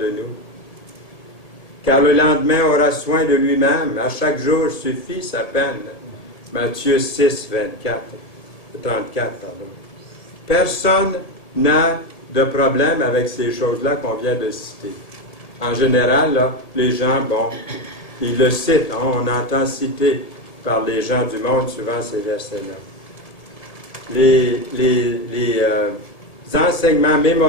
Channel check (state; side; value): late; right; 1.7 ms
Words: nous. Car le lendemain aura soin de lui-même, à chaque jour suffit sa peine. Matthieu 6, 34, pardon. Personne n'a de problème avec ces choses-là qu'on vient de citer. En général, là, les gens, bon, ils le citent, hein, on entend citer par les gens du monde souvent ces versets-là. Les enseignements